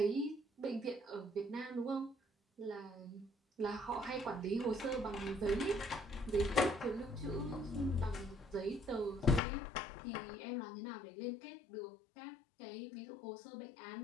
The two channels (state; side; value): drops out; right; at 9.4 s